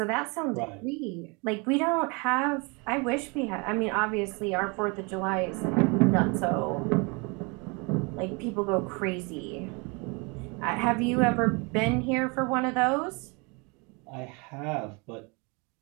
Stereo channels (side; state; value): left; quieter; 30.2 dB